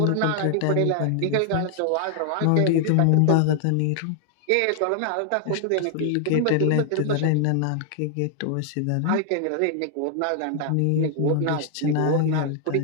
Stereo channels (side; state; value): both; different; correlation 0.00